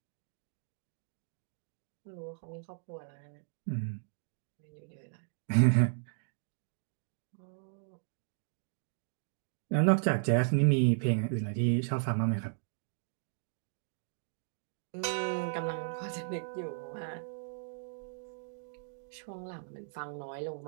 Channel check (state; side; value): silent; left; digital silence